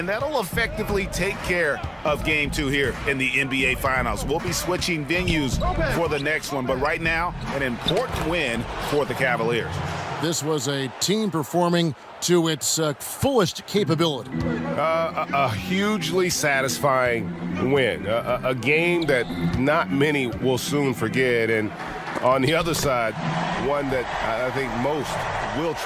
that'll effectively take care of Game 2 here in the NBA Finals. We'll be switching venues for the next one, but right now, an important win for the Cavaliers. This was a team performing to its fullest capability. A hugely satisfying win. A game that not many will soon forget. And on the other side, one that I think most will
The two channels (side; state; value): both; identical; correlation 1.00